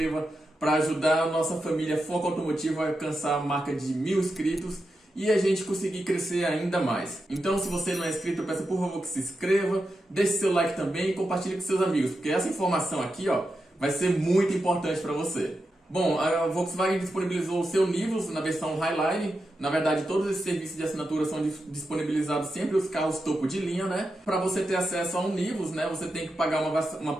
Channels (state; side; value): normal; both; correlation 0.88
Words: para ajudar a nossa família Foco Automotivo a alcançar a marca de 1000 inscritos e a gente conseguir crescer ainda mais. Então, se você não é inscrito, eu peço por favor que se inscreva, deixe seu like também e compartilhe com seus amigos, porque essa informação aqui, ó, vai ser muito importante para você. Bom, a Volkswagen disponibilizou o seu Nivus na versão Highline. Na verdade, todos esses serviços de assinatura são disponibilizados sempre os carros topo de linha, né? Para você ter acesso a um Nivus, né, você tem que pagar uma